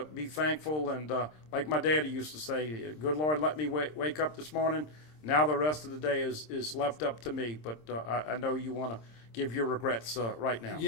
be thankful. And like my daddy used to say, good Lord let me wake up this morning. Now the rest of the day is left up to me. But I know you want to give your regrets right now.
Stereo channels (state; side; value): late; right; 26 ms